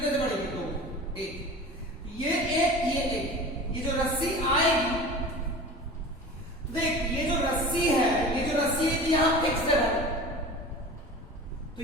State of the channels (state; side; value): normal; both; correlation 0.36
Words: से बढ़ेगी? 2। 1। ये 1 ये 1। ये जो रस्सी आएगी, देख ये जो रस्सी है, ये जो रस्सी है यहां फिक्स्ड है, तो